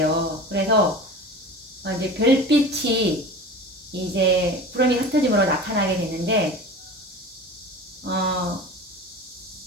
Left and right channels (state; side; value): normal; both; correlation 0.35